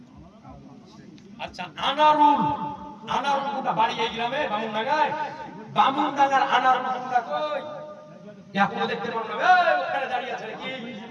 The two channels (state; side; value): identical; both; correlation 1.00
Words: আচ্ছা আনারুল কোনটা বাড়ি এই গ্রামে বামুনডাঙ্গার আনারুল কোনটা কই এখনো দেখতে পারো না এই ওখানে দাঁড়িয়ে আছে কি